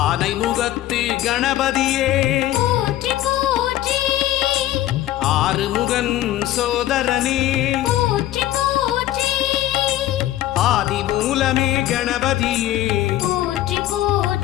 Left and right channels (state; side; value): quieter; right; 14.2 dB